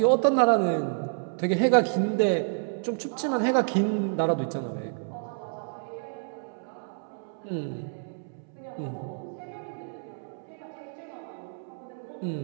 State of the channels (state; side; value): silent; left; 59 dB below the other